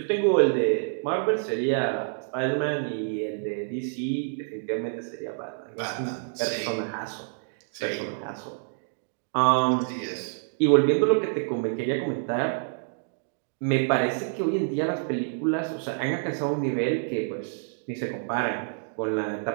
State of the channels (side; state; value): left; silent; digital silence